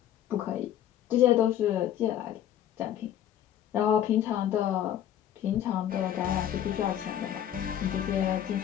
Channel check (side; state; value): right; quieter; 10.8 dB